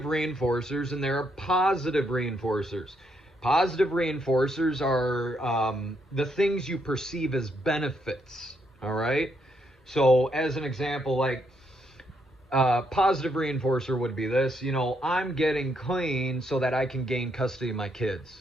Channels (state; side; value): normal; both; correlation 0.76